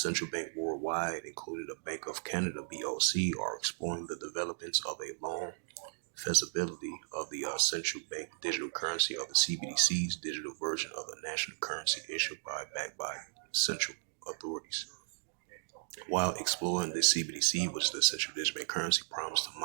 bank worldwide, including the Bank of Canada (BOC), are exploring the developments of a long feasibility of the central bank digital currency of the CBDC's digital version of the national currency issued backed by central authorities. While exploring the CBDC, which the central digital currency, promised to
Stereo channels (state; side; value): silent; left; digital silence